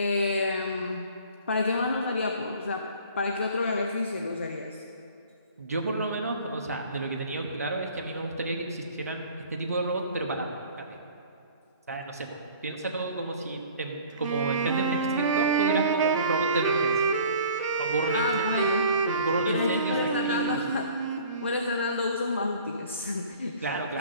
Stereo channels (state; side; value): inverted; both; correlation -0.48